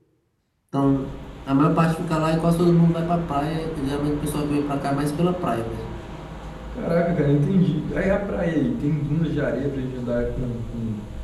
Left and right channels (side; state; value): both; identical; correlation 1.00